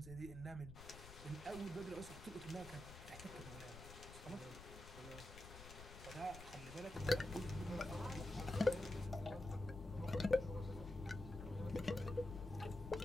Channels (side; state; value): left; noise; rumble, 13 dB below the sound